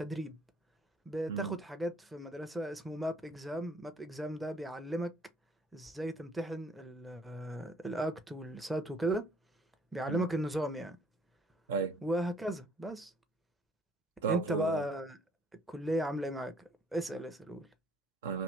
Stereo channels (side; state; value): both; normal; correlation 0.60